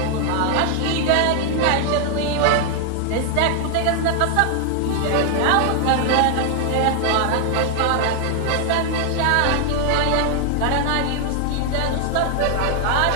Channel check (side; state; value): both; different; correlation 0.00